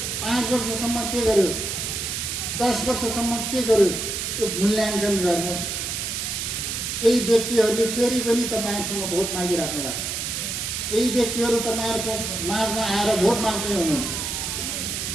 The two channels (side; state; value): right; noise; hiss, 3 dB below the sound